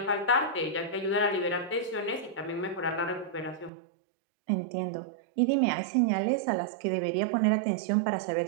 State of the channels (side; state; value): left; drops out; at 3.7 s